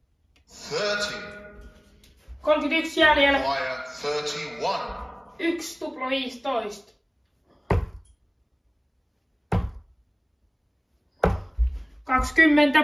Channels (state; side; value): identical; both; correlation 1.00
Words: 31 jäljellä. Require 31. 1 tupla 15. 20.